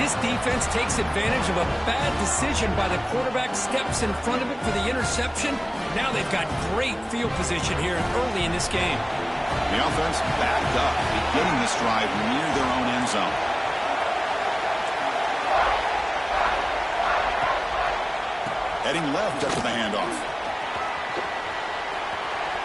defense takes advantage of a bad decision by the quarterback, steps in front of it for the interception. Now they've got great field position here early in this game. The offense backed up, beginning this drive near their own end zone. Heading left after the handoff.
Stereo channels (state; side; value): identical; both; correlation 1.00